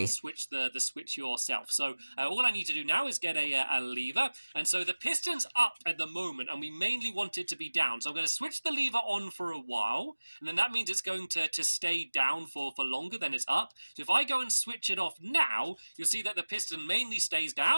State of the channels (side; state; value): both; inverted; correlation -1.00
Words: Switch the switch yourself. So all I need to do now is get a lever, and so the piston's up at the moment, and we mainly want it to be down. So I'm going to switch the lever on for a while, and then that means it's going to stay down for longer than it's up. So if I go and switch it off now, you'll see that the piston mainly stays